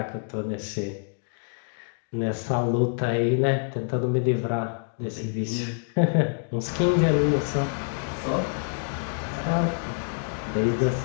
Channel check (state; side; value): silent; right; digital silence